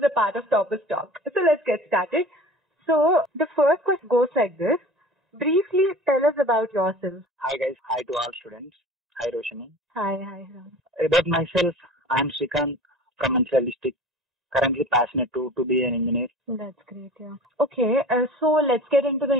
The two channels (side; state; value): both; normal; correlation 0.40